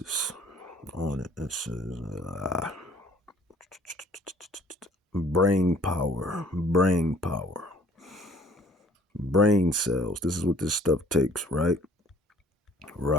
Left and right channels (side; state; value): both; normal; correlation 0.55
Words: on it. It says, brain power, brain cells. This is what this stuff takes, right?